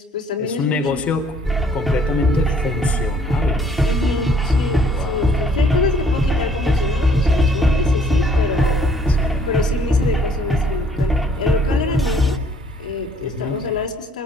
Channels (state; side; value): normal; both; correlation 0.61